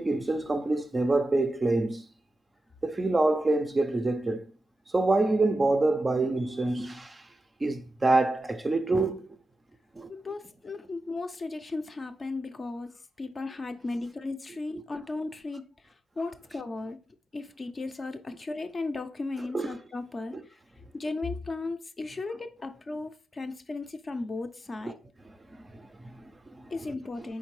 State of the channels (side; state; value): both; normal; correlation 0.91